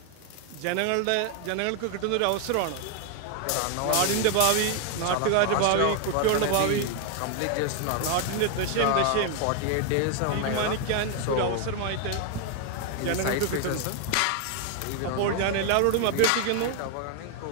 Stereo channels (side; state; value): both; different; correlation 0.00